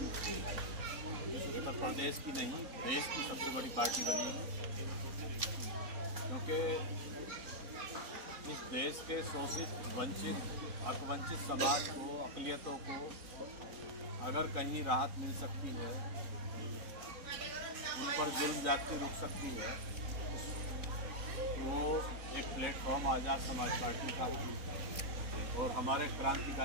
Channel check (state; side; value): late; left; 3.6 ms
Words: उत्तर प्रदेश की नहीं, देश की सबसे बड़ी पार्टी बनेगी, क्योंकि इस देश के शोषित, वंचित, हकवंचित समाज को, अक़लियतों को अगर कहीं राहत मिल सकती है, उन पर जुल्म ज्यादती रुक सकती है, तो एक प्लेटफॉर्म आज़ाद समाज पार्टी का है। और हमारे